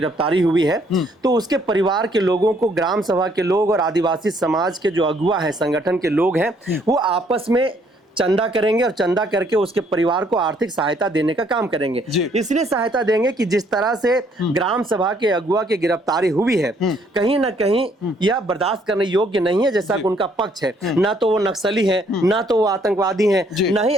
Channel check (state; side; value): normal; both; correlation 0.66